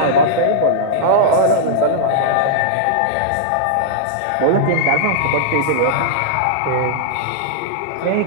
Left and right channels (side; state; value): both; different; correlation -0.02